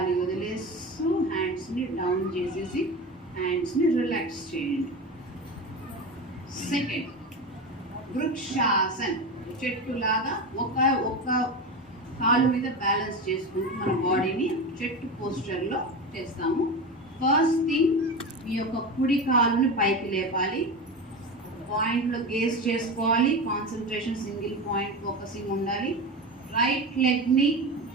వదిలేస్తూ హ్యాండ్స్ని డౌన్ చేసేసి హ్యాండ్స్ని రిలాక్స్ చేయండి. సెకండ్ వృక్షాసన్. చెట్టులాగా ఒక కాలు మీద బ్యాలెన్స్ చేసుకుంటూ మన బాడీని చెట్టు పోస్చర్లో చేస్తాము. ఫస్ట్ థింగ్, మీ యొక్క కుడి కాలుని పైకి లేపాలి. పాయింట్లో గేస్ చేసుకోవాలి. కాన్సన్ట్రేషన్ సింగిల్ పాయింట్ ఫోకసింగ్ ఉండాలి. రైట్ లెగ్ని,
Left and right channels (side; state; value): both; normal; correlation 0.24